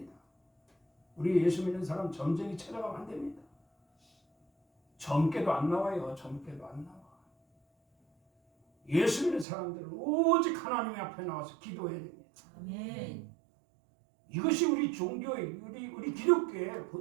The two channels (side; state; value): left; drops out; at 9.5 s